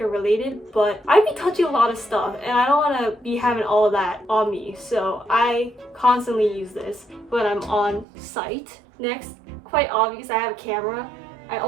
related, but I be touching a lot of stuff and I don't want to be having all of that on me. So I constantly use this when I'm on site. Next, quite obvious, I have a camera. I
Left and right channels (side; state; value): left; drops out; at 8.1 s